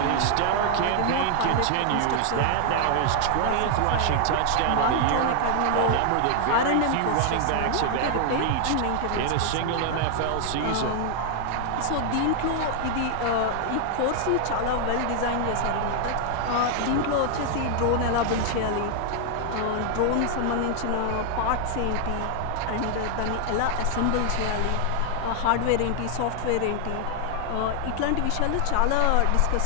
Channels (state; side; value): different; both; correlation 0.00